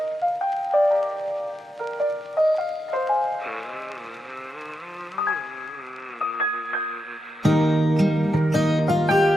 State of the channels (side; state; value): both; normal; correlation 0.86